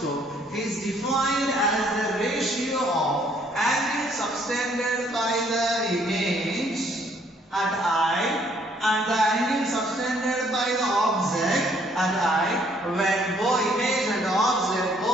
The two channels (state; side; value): normal; both; correlation 0.65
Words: is defined as the ratio of angle subtended by the image at eye and the angle subtended by the object at eye when both image and object